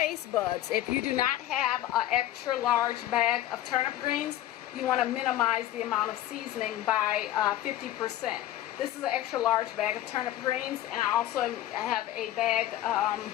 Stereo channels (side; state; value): right; quieter; 13.3 dB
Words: buds. If you do not have an extra large bag of turnip greens, you want to minimize the amount of seasoning by 50%. This is an extra large bag of turnip greens, and I also have a bag,